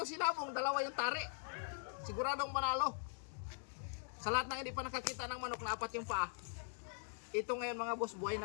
sinabong, 2 yung tari. Siguradong manalo. Sa lahat ng hindi pa nakakita ng manok na 4 yung paa, ito ngayon mga boss, buhay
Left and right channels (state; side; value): silent; right; digital silence